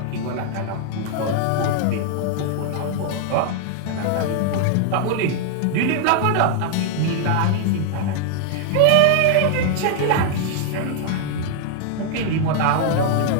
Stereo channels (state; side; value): different; both; correlation 0.00